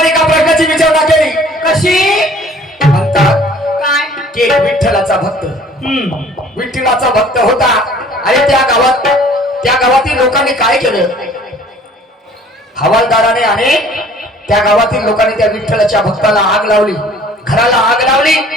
एका प्रश्नाची विचारणा केली. कशी म्हणतात काय की विठ्ठलाचा भक्त विठ्ठलाचा भक्त होता आणि त्या गावातील लोकांनी काय केलं? हवालदाराने आणि त्या गावातील लोकांनी त्या विठ्ठलाच्या भक्ताला आग लावली, घराला आग लावली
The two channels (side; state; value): both; normal; correlation 0.53